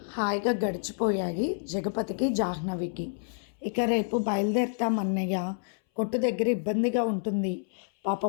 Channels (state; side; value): silent; right; 59 dB below the other